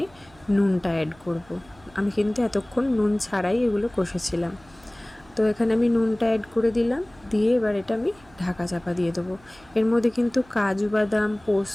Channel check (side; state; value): right; noise; hum, 27 dB below the sound